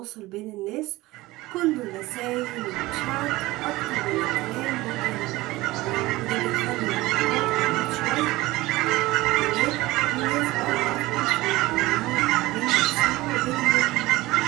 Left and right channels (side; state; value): left; quieter; 19.3 dB